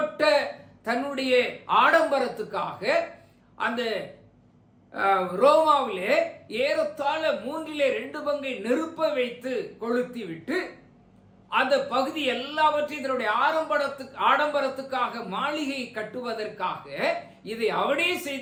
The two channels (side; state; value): both; identical; correlation 1.00